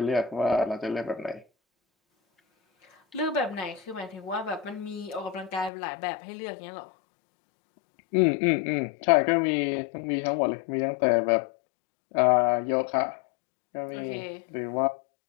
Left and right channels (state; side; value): drops out; right; at 5.7 s